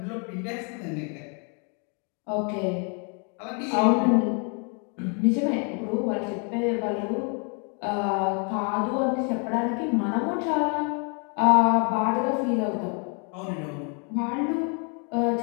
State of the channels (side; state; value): right; quieter; 37.3 dB